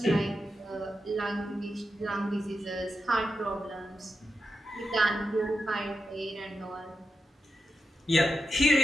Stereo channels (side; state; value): both; normal; correlation 0.88